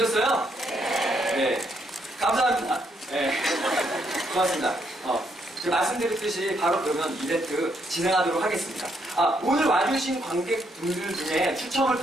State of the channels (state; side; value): normal; both; correlation 0.75